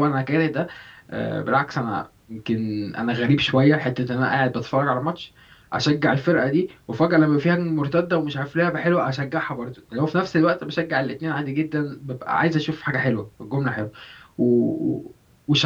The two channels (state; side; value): identical; both; correlation 1.00